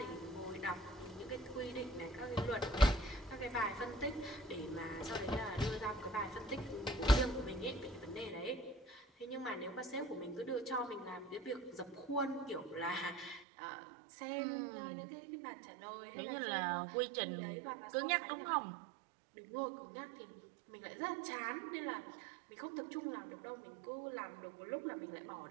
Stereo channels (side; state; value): left; drops out; at 13.5 s